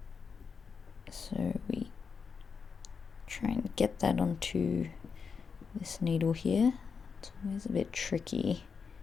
So we try and get that onto this needle here. It's always a bit tricky.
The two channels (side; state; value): right; quieter; 5.7 dB